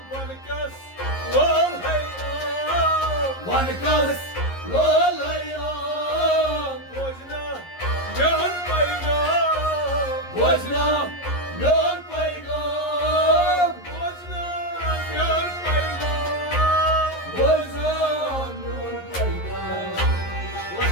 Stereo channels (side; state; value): right; late; 11 ms